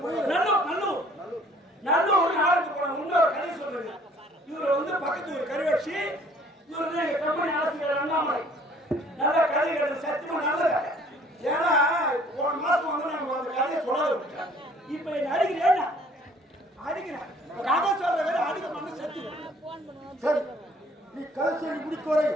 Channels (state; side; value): normal; both; correlation 0.56